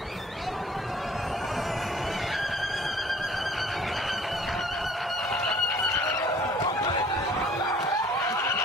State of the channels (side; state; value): both; normal; correlation 0.53